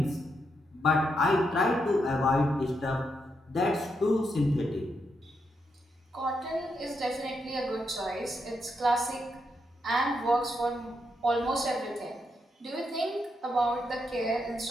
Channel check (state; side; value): normal; both; correlation 0.81